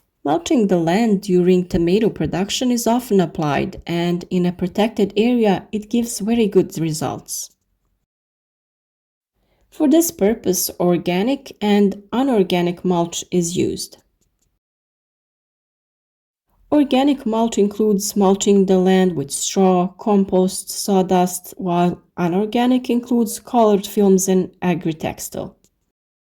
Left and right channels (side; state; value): both; identical; correlation 1.00